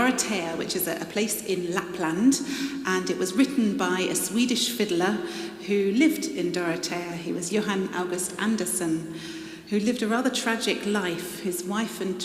which is a place in Lapland. And it was written by a Swedish fiddler who lived in Dorotea. He was Johan August Andersson, who lived a rather tragic life. His wife and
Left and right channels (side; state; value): both; identical; correlation 1.00